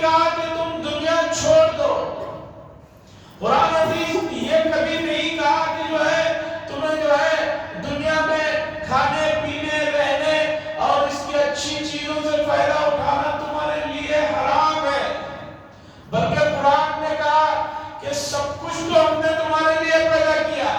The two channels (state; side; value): identical; both; correlation 1.00